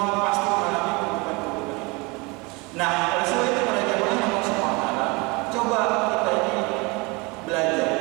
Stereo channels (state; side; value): quieter; left; 27.1 dB